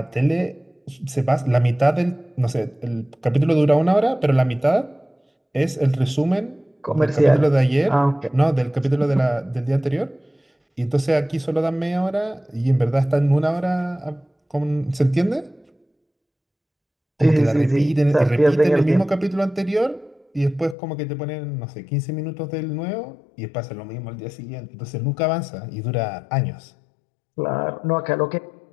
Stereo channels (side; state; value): right; drops out; at 20.8 s